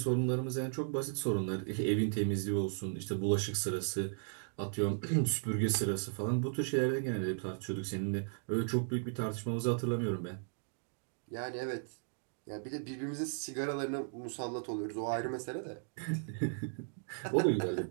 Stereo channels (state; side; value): silent; left; digital silence